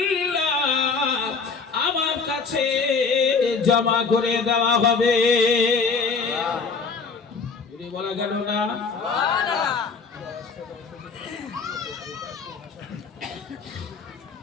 আমার কাছে জমা করে দেওয়া হবে। বলা গেল না?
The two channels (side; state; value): right; quieter; 4.8 dB